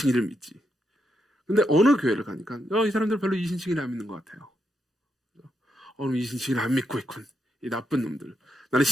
믿지. 근데 어느 교회를 가니까 이 사람들 별로 이신칭의를 안 믿는 것 같아요. 이신칭의를 안 믿고 있군. 이 나쁜 놈들. 나는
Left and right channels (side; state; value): both; normal; correlation 0.82